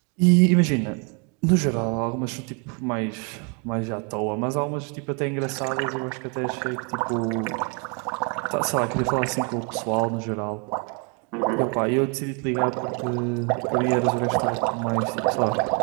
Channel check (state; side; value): quieter; left; 35.5 dB